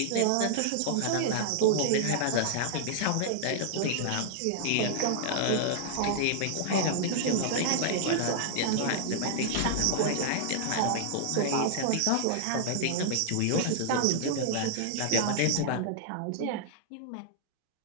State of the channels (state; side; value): different; both; correlation -0.01